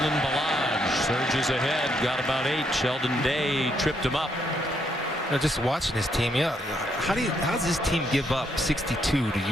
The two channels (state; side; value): normal; both; correlation 0.75